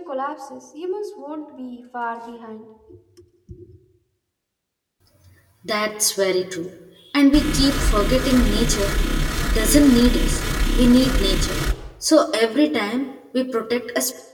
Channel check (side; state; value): both; identical; correlation 1.00